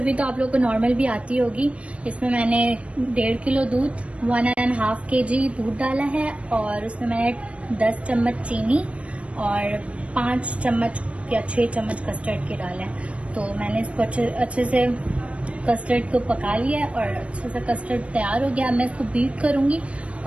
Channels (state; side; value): late; left; 0.062 ms